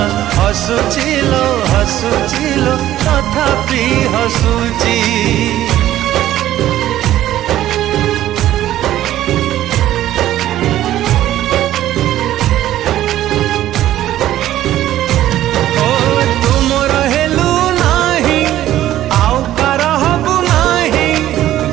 हसुचिलो हसुचिलो तथापि हसुची।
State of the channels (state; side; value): quieter; left; 13.3 dB